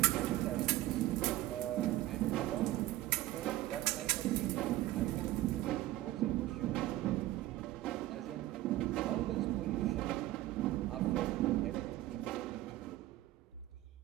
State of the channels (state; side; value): quieter; left; 15.9 dB